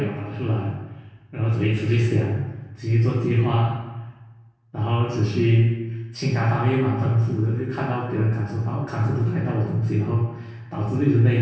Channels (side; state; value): both; identical; correlation 1.00